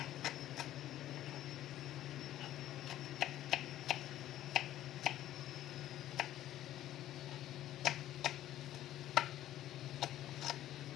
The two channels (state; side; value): quieter; right; 13.0 dB